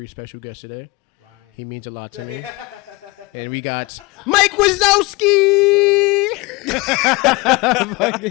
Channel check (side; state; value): right; quieter; 24.3 dB